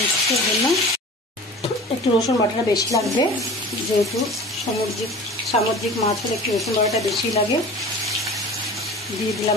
এর জন্য একটু রসুন বাটাটা বেশি লাগবে, যেহেতু সামুদ্রিক মাছ হলে একটু রসুন বাটাটা বেশি লাগে। দিয়ে দিলাম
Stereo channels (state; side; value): normal; both; correlation 0.39